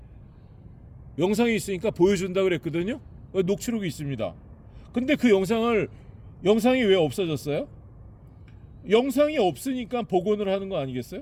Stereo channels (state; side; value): identical; both; correlation 1.00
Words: 영상이 있으니까 보여준다 그랬거든요. 녹취록이 있습니다. 근데 그 영상이 왜 없어졌어요? 영상이 없으니까 복원을 하는 거 아니겠어요?